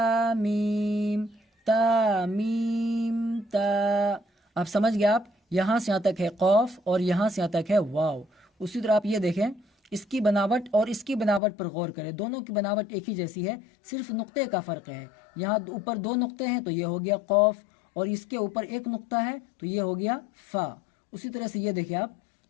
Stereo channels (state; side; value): drops out; right; at 11.4 s